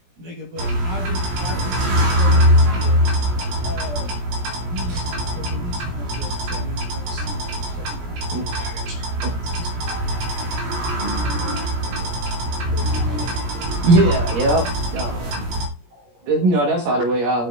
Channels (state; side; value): late; left; 17 ms